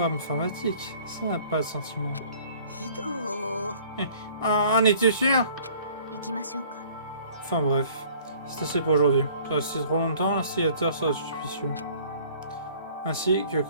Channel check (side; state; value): both; inverted; correlation -0.53